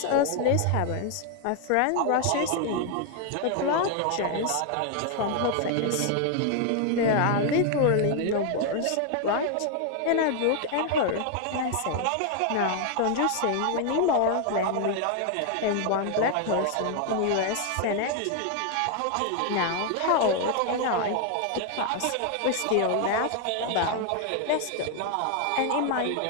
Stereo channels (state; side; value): different; both; correlation 0.00